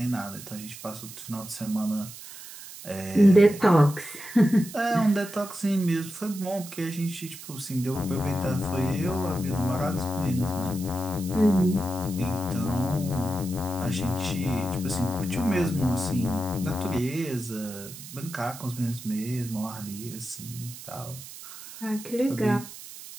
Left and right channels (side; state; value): right; noise; hiss, 14 dB below the sound